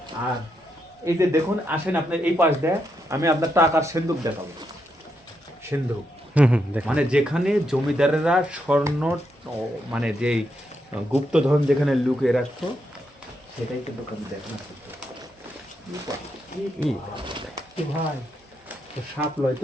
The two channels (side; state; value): both; normal; correlation 0.81